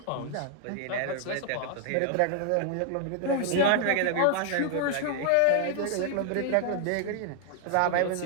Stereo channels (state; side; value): different; both; correlation 0.00